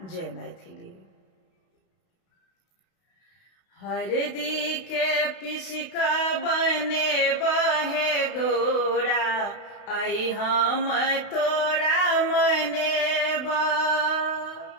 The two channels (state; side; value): late; right; 32 ms